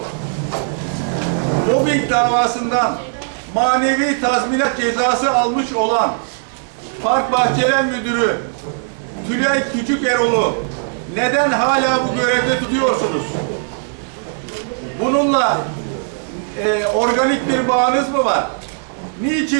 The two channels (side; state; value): left; silent; digital silence